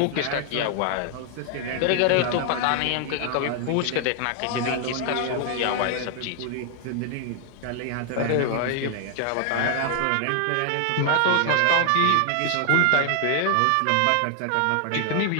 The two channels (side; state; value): both; different; correlation 0.00